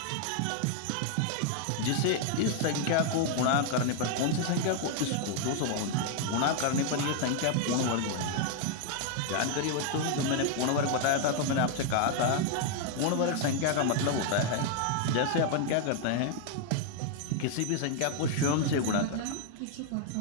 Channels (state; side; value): different; both; correlation 0.00